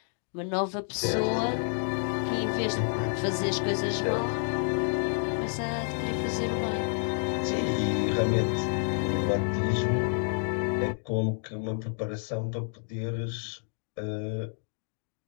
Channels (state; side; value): silent; right; 58 dB below the other